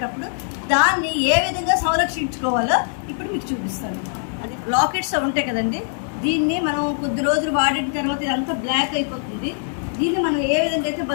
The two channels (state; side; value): silent; right; 64 dB below the other